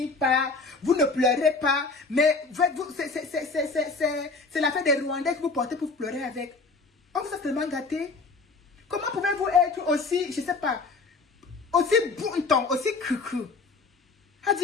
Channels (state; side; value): quieter; right; 4.0 dB